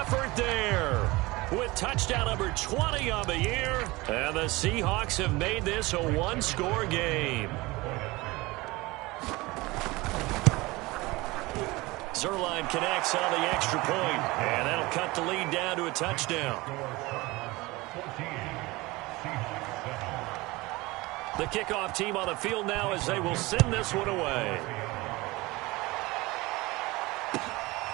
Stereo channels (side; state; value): left; quieter; 21.8 dB